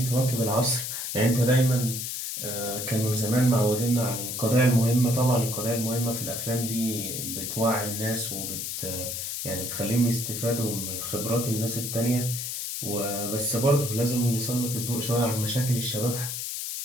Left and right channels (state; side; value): noise; left; hiss, 4 dB below the sound